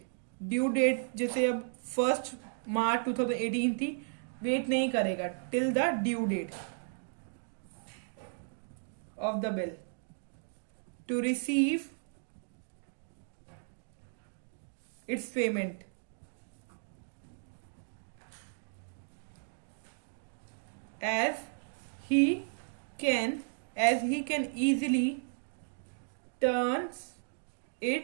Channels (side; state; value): left; silent; digital silence